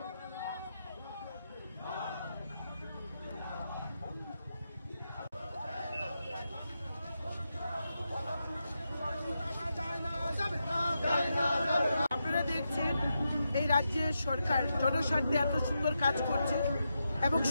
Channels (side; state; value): both; inverted; correlation -0.86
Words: আপনারা দেখছেন এই রাজ্যের সরকার জনস্বার্থে এত সুন্দর কাজ করছে এবং